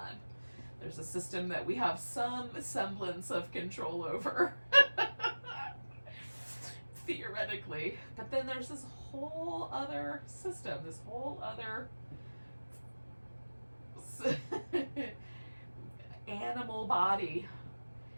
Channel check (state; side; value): inverted; both; correlation -1.00